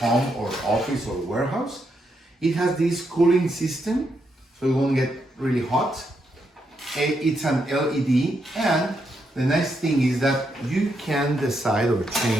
home or office or warehouse. It has this cooling system, so it won't get really hot. It's an LED, and the nice thing is that you can decide or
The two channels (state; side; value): normal; both; correlation 0.80